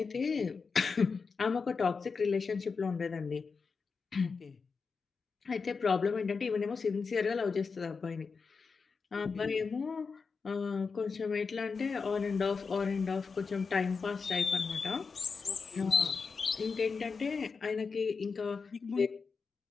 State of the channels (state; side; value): quieter; right; 5.0 dB